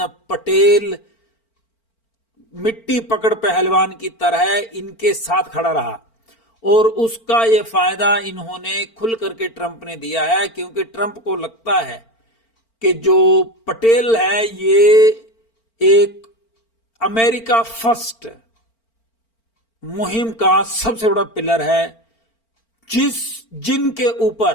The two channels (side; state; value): right; late; 4.4 ms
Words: पटेल मिट्टी पकड़ पहलवान की तरह इनके साथ खड़ा रहा और उसका ये फायदा इन्होंने खुल करके ट्रंप ने दिया है, क्योंकि ट्रंप को लगता है कि जो पटेल है ये एक अमेरिका फर्स्ट मुहिम का सबसे बड़ा पिलर है, जिनके